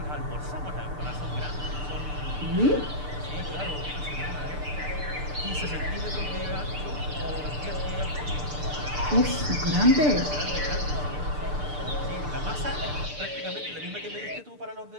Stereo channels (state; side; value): late; left; 6.8 ms